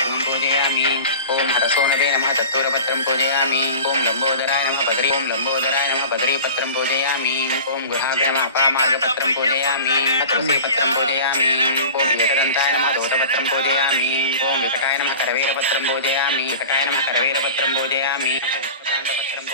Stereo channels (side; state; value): both; inverted; correlation -0.37